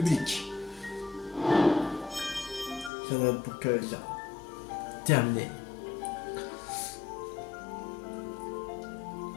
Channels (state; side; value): drops out; right; at 2.9 s